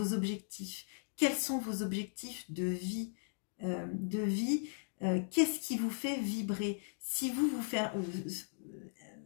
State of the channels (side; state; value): right; silent; digital silence